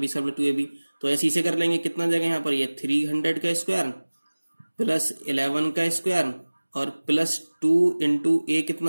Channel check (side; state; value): both; inverted; correlation -1.00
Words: square 2ab, तो ऐसे इसे कर लेंगे। कितना जाएगा यहाँ पर, ये 300 का स्क्वायर प्लस 11 का स्क्वायर और प्लस 2 इंटू a